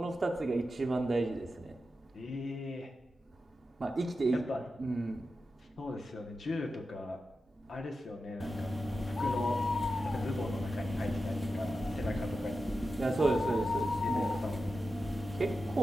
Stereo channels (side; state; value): both; normal; correlation 0.91